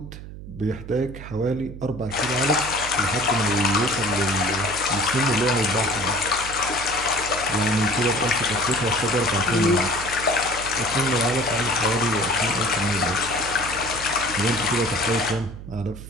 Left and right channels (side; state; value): right; noise; hum, 12 dB below the sound